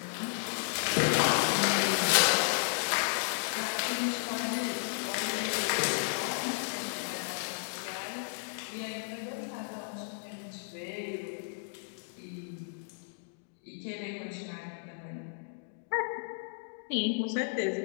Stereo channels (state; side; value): silent; right; digital silence